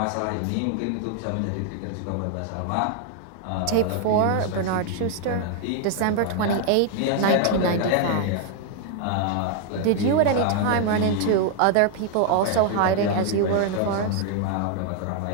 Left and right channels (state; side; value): different; both; correlation 0.00